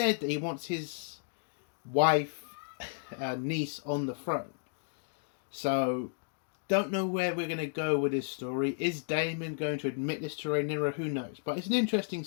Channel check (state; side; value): silent; right; digital silence